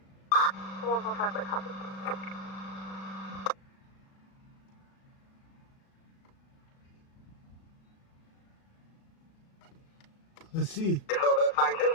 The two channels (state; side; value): late; right; 36 ms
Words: 145 by copy. Let's see. So that's 19